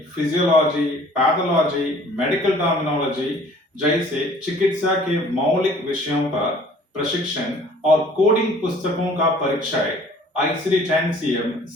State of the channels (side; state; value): both; normal; correlation 0.52